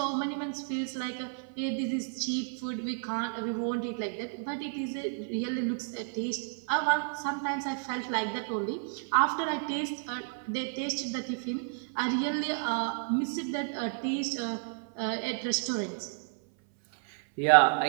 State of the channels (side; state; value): left; silent; 57 dB below the other